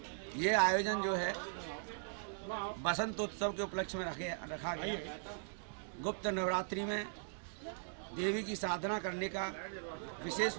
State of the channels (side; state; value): left; silent; digital silence